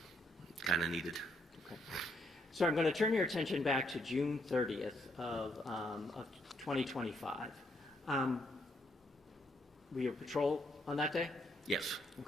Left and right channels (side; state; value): both; normal; correlation 0.73